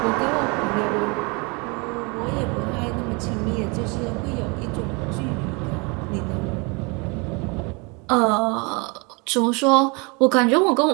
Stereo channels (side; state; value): left; quieter; 29.8 dB